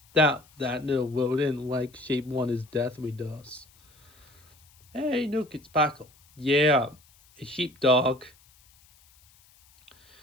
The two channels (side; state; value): left; noise; hiss, 29 dB below the sound